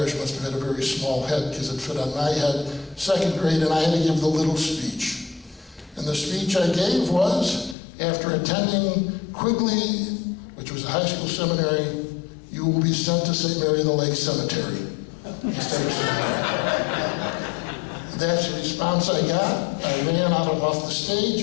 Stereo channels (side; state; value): right; drops out; at 7.8 s